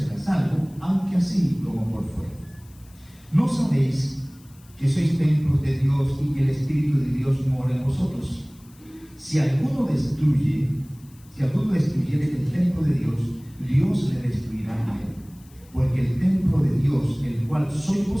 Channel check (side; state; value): left; noise; hiss, 28 dB below the sound